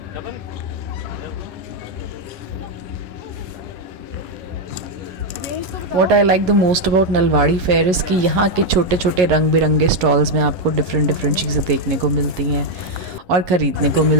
What I like the most about Nalwari fair is कि यहाँ के छोटे छोटे रंग बिरंगे स्टॉल्स में आपको डिफरेंट डिफरेंट चीज़ें देखने को मिलती हैं और ख़रीदने को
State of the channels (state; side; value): late; left; 11 ms